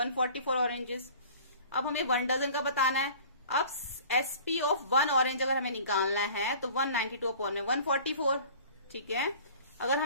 ऑरेंजेस। अब हमें 1 डजन का बताना है। अब एसपी ऑफ 1 ऑरेंज अगर हमें निकालना है तो 192 अपॉन में 144। ठीक है, अगर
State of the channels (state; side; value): inverted; both; correlation -0.46